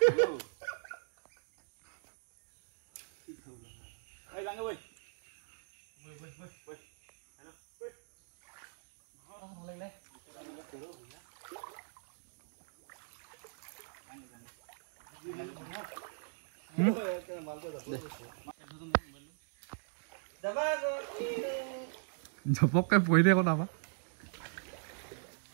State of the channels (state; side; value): silent; left; digital silence